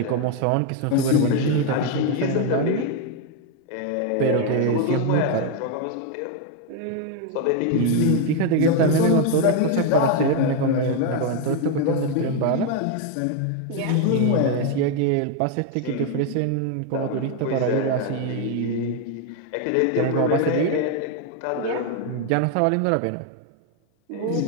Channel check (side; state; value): both; different; correlation 0.01